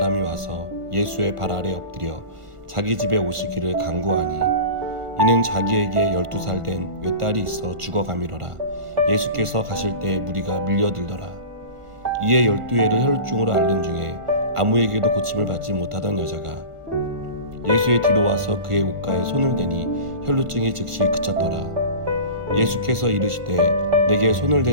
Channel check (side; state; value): left; late; 1.5 ms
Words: 와서 예수의 발 아래 엎드려 자기 집에 오시기를 간구하니 이는 자기에게 12살 된 외딸이 있어 죽어가미로라. 예수께서 가실 때 무리가 밀려들더라. 이에 12회를 혈루증으로 앓는 중에 아무에게도 고침을 받지 못하던 여자가 예수의 뒤로 와서 그의 옷가에 손을 대니 혈루증이 즉시 그쳤더라. 예수께서 이르시되 내게 손을